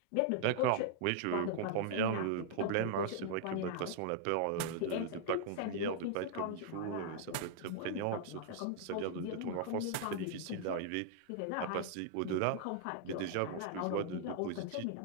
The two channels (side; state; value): both; different; correlation -0.01